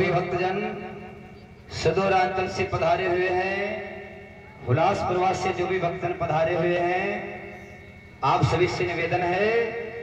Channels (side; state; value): both; identical; correlation 1.00